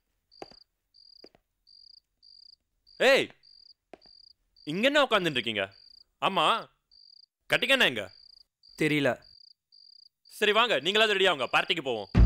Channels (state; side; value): identical; both; correlation 1.00